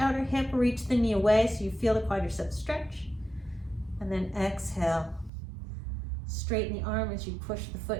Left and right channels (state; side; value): drops out; left; at 5.3 s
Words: hip. Reach the knee away so you feel the quadriceps stretch. And then exhale. Straighten the arm as you push the